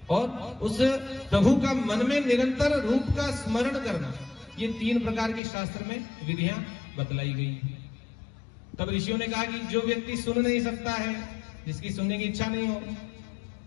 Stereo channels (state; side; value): drops out; right; at 5.4 s